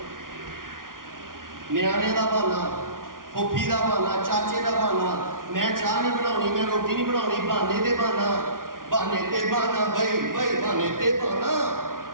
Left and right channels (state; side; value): late; left; 0.90 ms